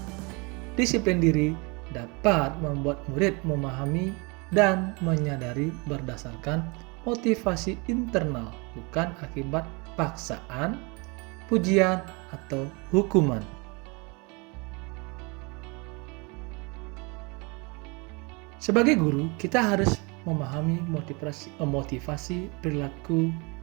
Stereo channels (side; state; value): left; quieter; 29.3 dB